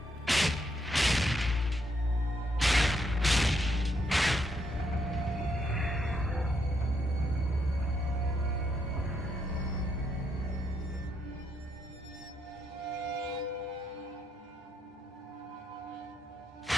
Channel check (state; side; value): normal; both; correlation 0.76